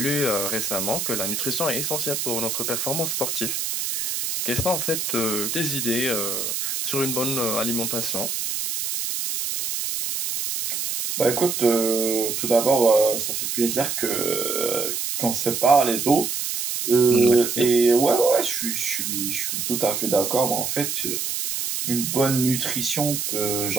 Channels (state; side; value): noise; right; hiss, 2 dB below the sound